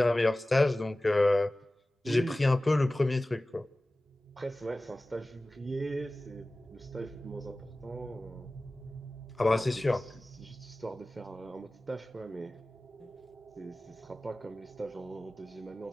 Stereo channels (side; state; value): both; normal; correlation 0.97